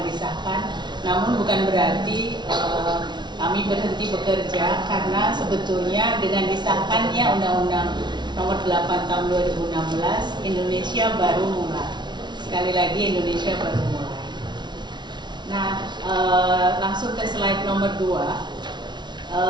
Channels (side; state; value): left; late; 0.21 ms